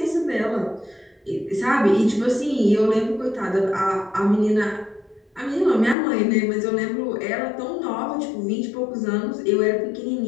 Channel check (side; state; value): right; drops out; at 6.0 s